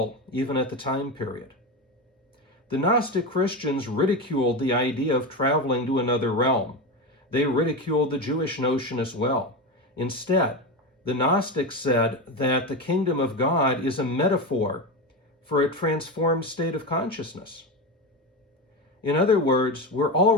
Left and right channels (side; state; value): both; normal; correlation 0.18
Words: even at the time period. The Gnostic Christians ridiculed the idea of traveling to another realm. They ridiculed the Jewish notion as well. Instead, the Gnostics said that the kingdom of God is a metaphor for a transformed state of consciousness. In other words, we're